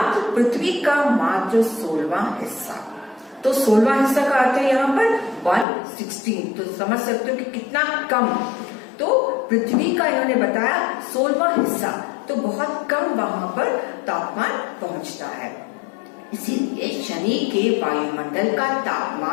पृथ्वी का मात्र 16वां हिस्सा, तो 16वां हिस्सा का अर्थ है यहाँ पर 1/16। तो समझ सकते हो कि कितना कम। तो पृथ्वी का इन्होंने बताया 16वां हिस्सा, तो बहुत कम वहां पर तापमान पहुंचता है। इसीलिए शनि के वायुमंडल का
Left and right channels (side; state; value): right; drops out; at 5.7 s